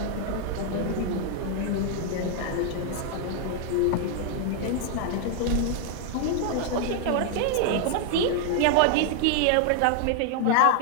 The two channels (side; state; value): both; different; correlation 0.00